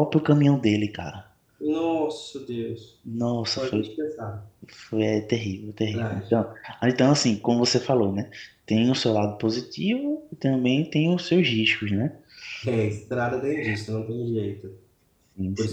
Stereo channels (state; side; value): identical; both; correlation 1.00